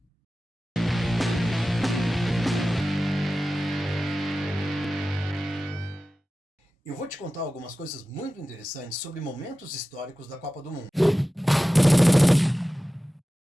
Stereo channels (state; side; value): normal; both; correlation 0.95